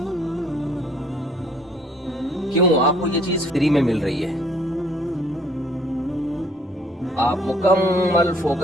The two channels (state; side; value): normal; both; correlation 0.61